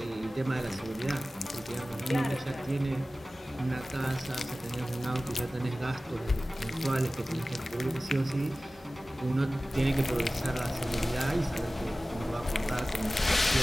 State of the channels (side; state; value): both; normal; correlation 0.96